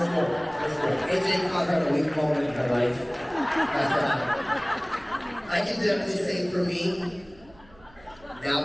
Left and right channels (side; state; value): right; noise; hum, 26 dB below the sound